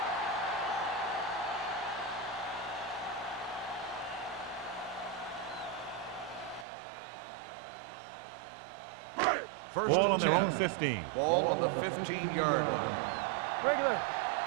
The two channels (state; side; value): drops out; left; at 6.7 s